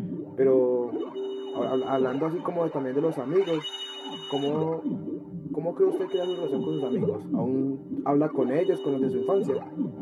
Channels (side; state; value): both; identical; correlation 1.00